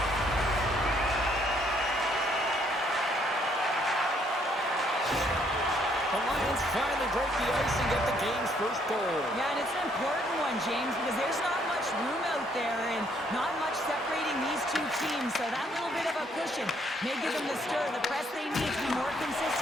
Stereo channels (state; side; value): normal; both; correlation 0.68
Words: The Lions finally break the ice and get the game's first goal. Yeah, and it's an important one, James, because there's not much room out there and not much separating these two teams. So that little bit of a cushion may give them the stir, the press they need to be more